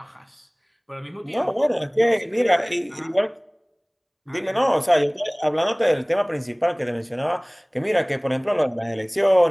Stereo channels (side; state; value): both; identical; correlation 1.00